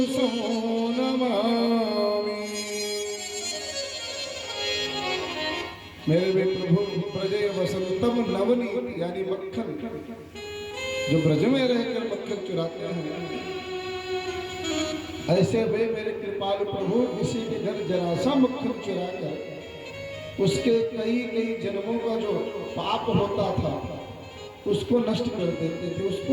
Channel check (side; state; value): both; identical; correlation 1.00